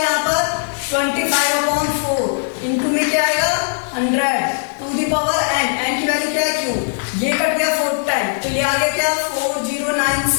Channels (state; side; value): silent; right; 67 dB below the other